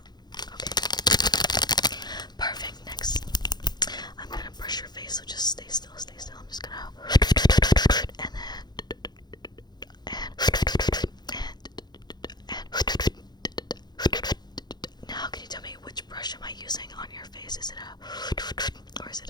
Okay. Perfect. Next, I'm gonna brush your face. So just stay still. Stay still. I'm just gonna. And then. Now, can you tell me which brush am I using on your face? Is it a or is it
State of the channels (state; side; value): late; right; 0.20 ms